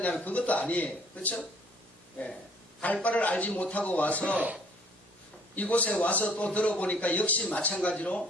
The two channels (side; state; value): both; normal; correlation 0.59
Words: 그것도 아니에요. 그렇죠? 예. 갈 바를 알지 못하고 와서 이곳에 와서 또 들어보니까 역시